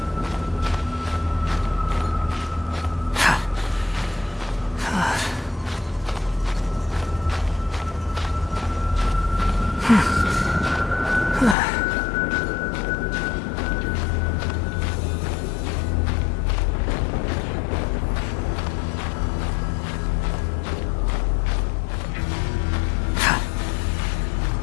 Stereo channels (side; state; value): right; drops out; at 11.6 s